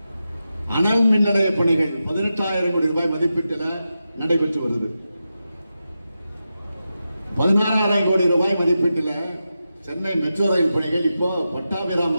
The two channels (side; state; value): both; inverted; correlation -0.90